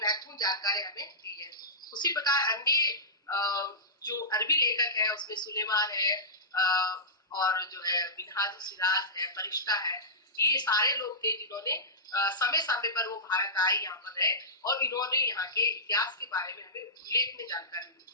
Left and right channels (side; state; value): both; normal; correlation -0.17